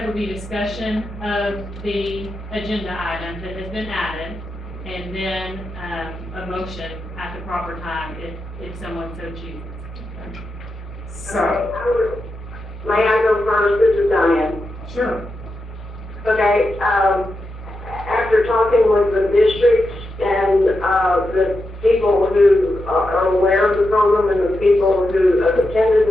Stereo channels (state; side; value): normal; both; correlation 0.87